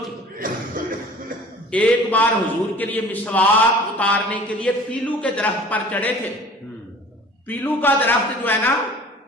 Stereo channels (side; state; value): both; normal; correlation 0.45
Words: تھی. ایک بار حضور کے لیے مسواک اتارنے کے لیے پیلو کے درخت پر چڑھے تھے. پیلو کا درخت جو ہے نا